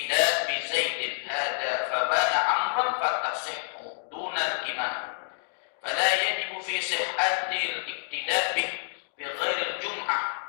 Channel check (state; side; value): silent; right; digital silence